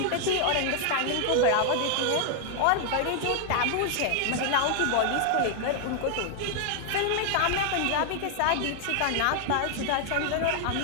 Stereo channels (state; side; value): different; both; correlation 0.00